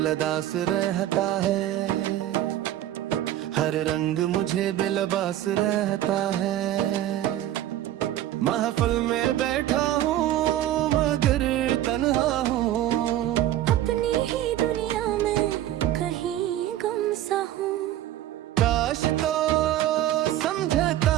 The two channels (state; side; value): quieter; left; 13.0 dB